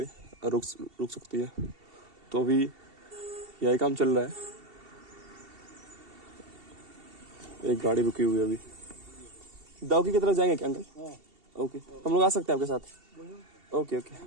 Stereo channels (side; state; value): left; late; 2.7 ms